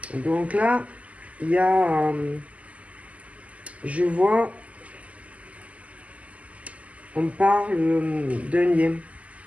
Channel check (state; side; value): late; left; 0.069 ms